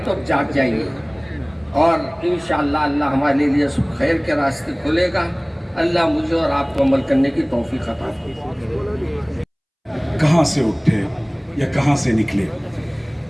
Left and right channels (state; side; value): identical; both; correlation 1.00